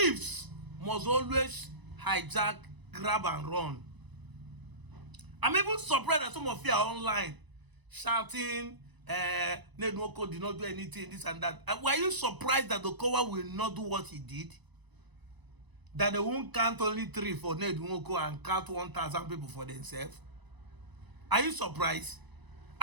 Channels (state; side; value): late; left; 1.0 ms